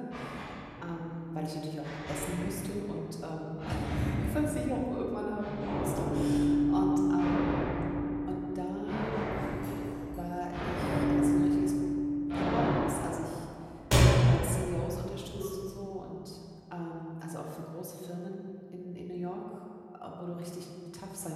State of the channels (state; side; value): identical; both; correlation 1.00